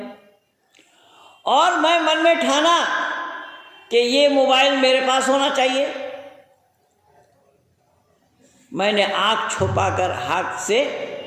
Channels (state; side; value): identical; both; correlation 1.00